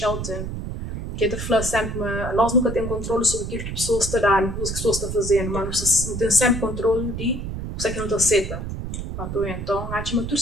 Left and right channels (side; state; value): right; noise; rumble, 5 dB below the sound